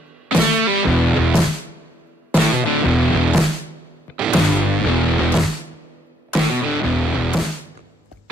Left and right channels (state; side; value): normal; both; correlation 0.72